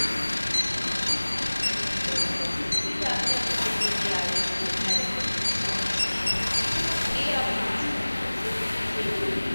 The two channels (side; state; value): both; inverted; correlation -1.00